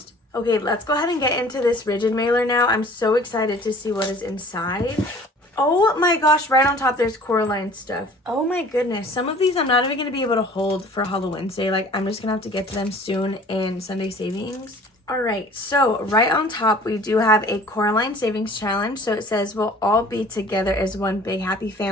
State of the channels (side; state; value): both; normal; correlation 0.49